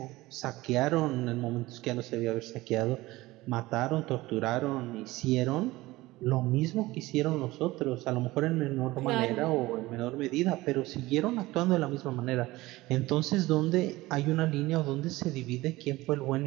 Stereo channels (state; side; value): quieter; left; 19.0 dB